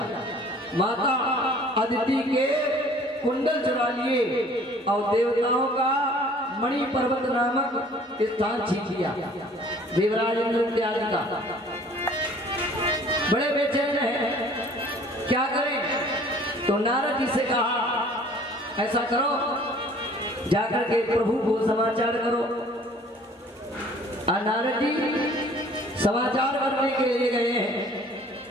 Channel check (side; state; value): both; normal; correlation 0.52